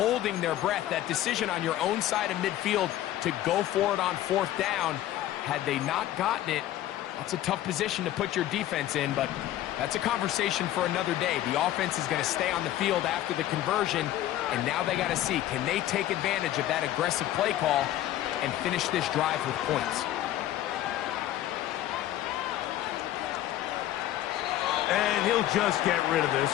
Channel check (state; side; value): quieter; right; 13.4 dB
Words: their breath. That decision on your own side of midfield to go for it on 4th down, had they not gotten it, that's a tough position to put your defense in, but that's a conversation for another day. The offense is going to stay on the field after the conversion, and now they got to see, can they take advantage of that aggressive play call and finish this drive with points? And he'll just get rid of this.